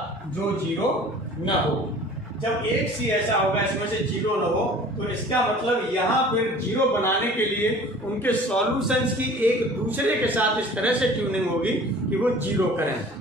जो 0 न हो। जब एक c ऐसा होगा इसमें से 0 न हो तो इसका मतलब यहाँ पर 0 बनाने के लिए उनके सॉल्यूशंस की एक दूसरे के साथ इस तरह से ट्यूनिंग होगी कि वो 0 करें।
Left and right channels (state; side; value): normal; both; correlation 0.46